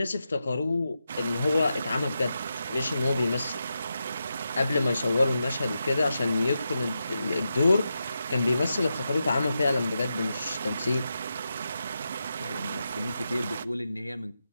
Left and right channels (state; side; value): inverted; both; correlation -0.88